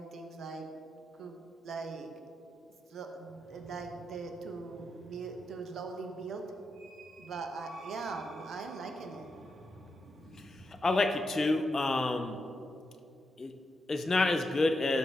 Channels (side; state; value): both; normal; correlation 0.86